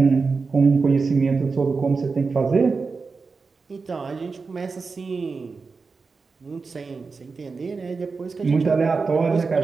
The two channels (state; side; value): quieter; left; 4.5 dB